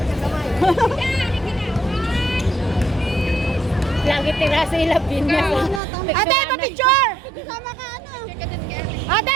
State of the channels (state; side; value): drops out; left; at 5.8 s